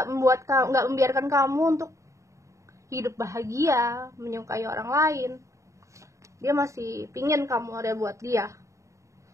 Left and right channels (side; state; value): left; late; 0.15 ms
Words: membiarkan kamu untuk hidup bahagia, menyukai orang lain. Dia masih pingin kamu ada buat dia,